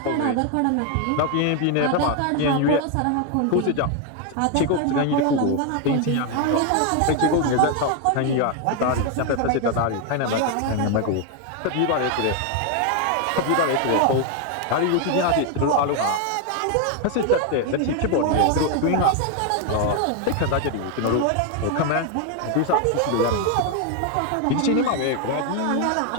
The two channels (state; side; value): different; both; correlation 0.01